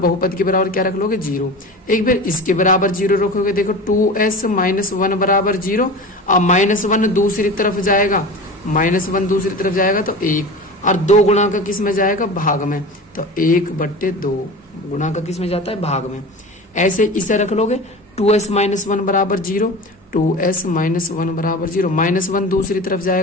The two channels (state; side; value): normal; both; correlation 0.32